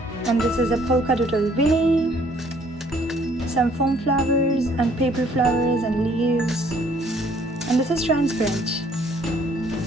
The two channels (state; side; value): normal; both; correlation 0.61